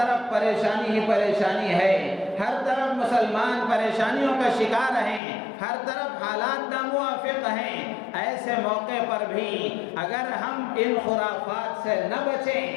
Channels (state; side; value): drops out; right; at 5.2 s